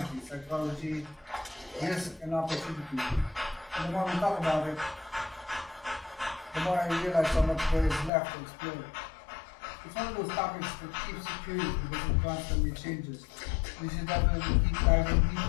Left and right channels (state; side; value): drops out; right; at 8.1 s